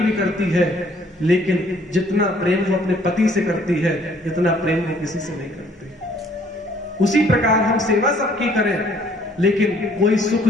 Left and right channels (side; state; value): both; normal; correlation 0.60